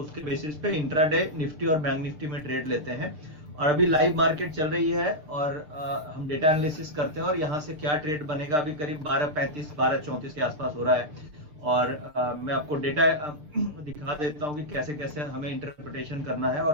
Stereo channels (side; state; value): left; late; 6.6 ms